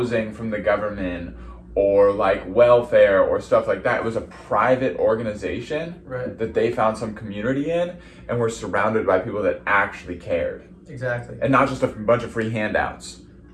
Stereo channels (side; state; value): both; identical; correlation 1.00